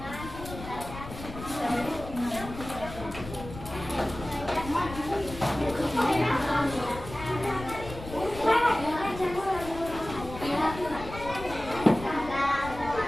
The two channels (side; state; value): left; noise; rumble, 12 dB below the sound